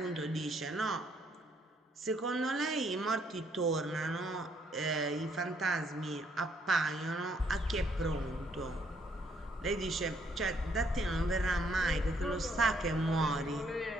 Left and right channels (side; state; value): both; normal; correlation 0.69